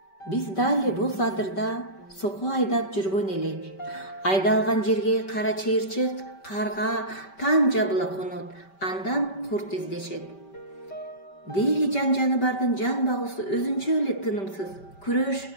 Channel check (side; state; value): right; late; 5.2 ms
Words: Биз дали бул адырда соко айдап жүргөн элек. Айдалган жерге кара чыйырчык, карга, таң жабыла конот, андан курт издешет. Деги жан-жаны бардын жан багуусу өзүнчө эле тынымсыз, күрөш